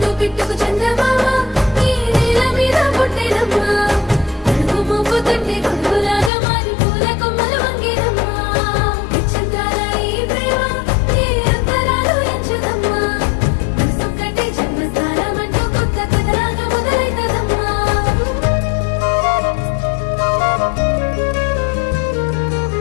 పిట్టుకు చందమామ నీ నేల మీద పుట్టెనమ్మా అడుగు మోపు తట్టి గొడుగులాగా మారి పూల కొమ్మలు వంగేనమ్మా పిచ్చంతాల ఈ ప్రేమ నీ అంతరాలు ఎంచదమ్మా మనసొక్కటి జన్మస్థానమంటూ కొత్త కథలాగా మొదలైతదమ్మా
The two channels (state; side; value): drops out; right; at 6.3 s